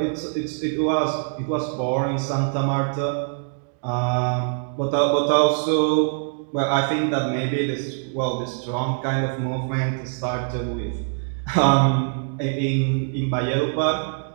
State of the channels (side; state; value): left; silent; digital silence